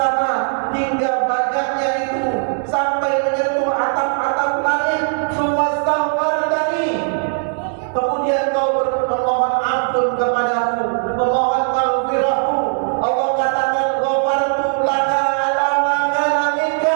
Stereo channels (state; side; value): silent; left; digital silence